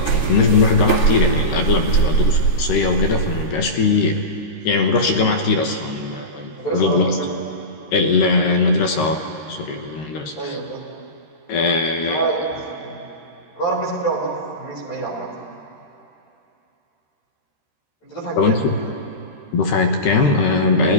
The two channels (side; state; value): right; late; 13 ms